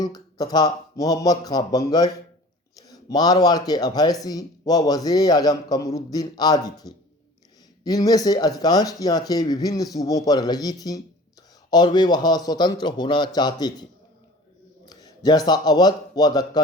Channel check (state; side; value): normal; both; correlation 0.43